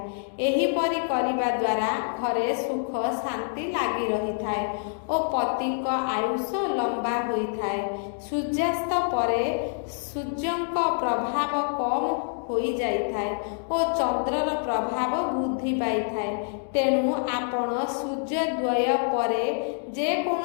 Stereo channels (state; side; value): silent; right; digital silence